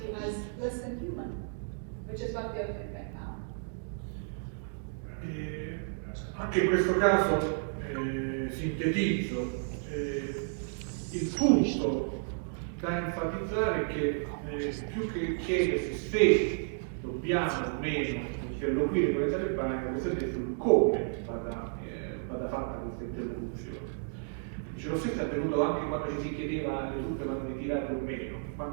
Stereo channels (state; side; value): silent; left; digital silence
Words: as less than human, which is what they are doing right now. Anche in questo caso sintetizzo, il punto da enfatizzare è che più che chiedersi se dobbiamo o meno interloquire con i talebani, la questione è sul come vada fatta questa interlocuzione. Dice, lo stesso è avvenuto anche quando ci si chiedeva le truppe vanno ritirate o meno,